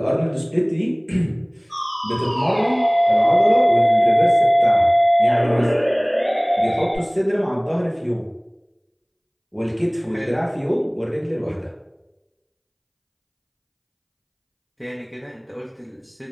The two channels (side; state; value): both; identical; correlation 1.00